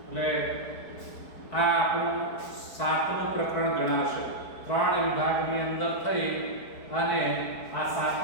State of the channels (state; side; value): late; right; 4.7 ms